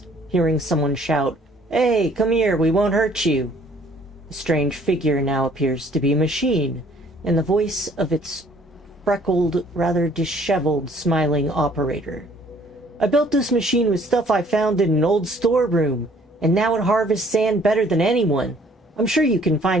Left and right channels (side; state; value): both; normal; correlation 0.59